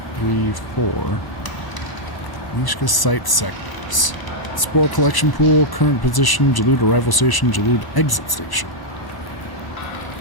3, 4. Neyyah site sectors. Spore collection pool, current position, Jalud arrival station, Jalud exit station.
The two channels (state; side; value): late; right; 1.0 ms